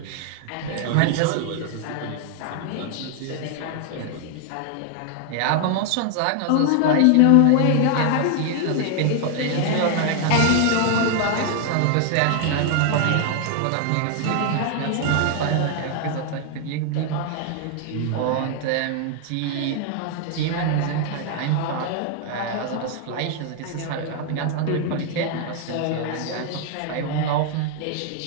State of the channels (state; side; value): different; both; correlation 0.00